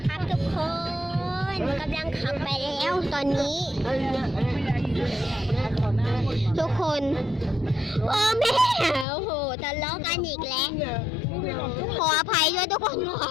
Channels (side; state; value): right; drops out; at 9.1 s